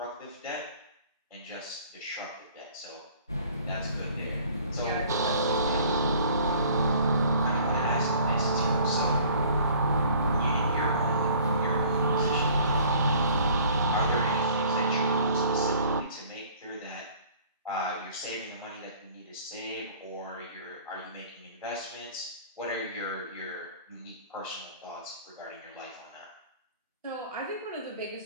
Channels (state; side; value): inverted; both; correlation -0.52